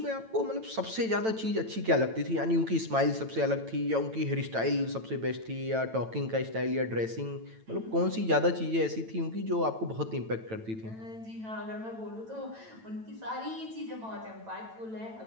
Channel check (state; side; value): late; left; 9.0 ms